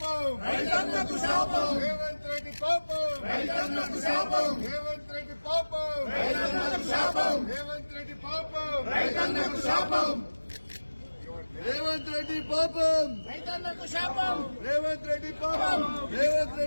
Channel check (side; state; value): both; inverted; correlation -1.00